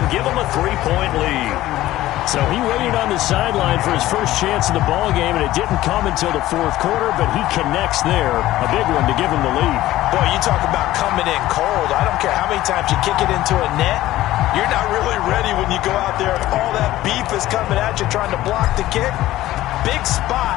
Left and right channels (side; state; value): right; quieter; 15.4 dB